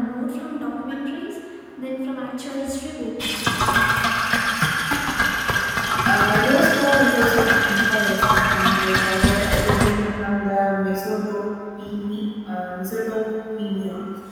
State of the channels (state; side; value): identical; both; correlation 1.00